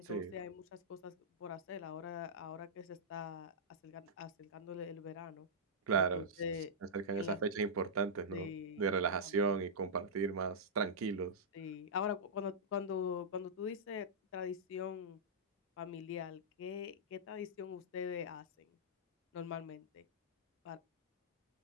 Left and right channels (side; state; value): both; normal; correlation -0.13